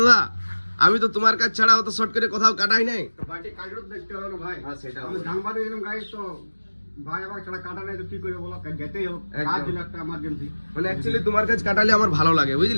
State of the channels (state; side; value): inverted; both; correlation -1.00